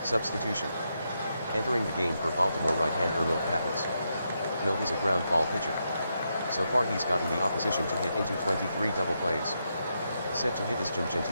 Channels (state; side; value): inverted; both; correlation -0.83